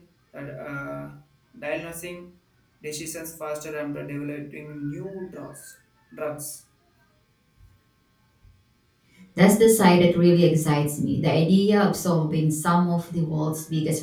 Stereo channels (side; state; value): both; identical; correlation 1.00